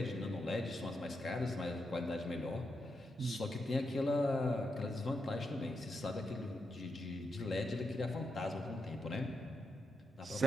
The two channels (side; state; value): both; normal; correlation 0.84